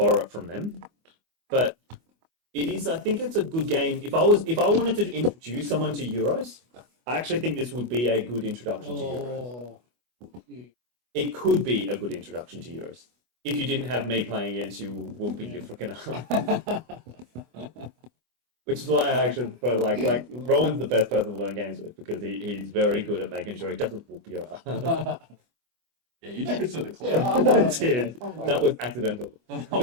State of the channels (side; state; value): left; late; 24 ms